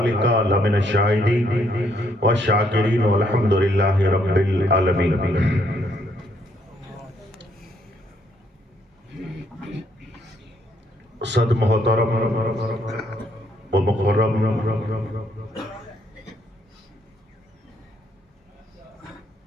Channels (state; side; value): normal; both; correlation 0.71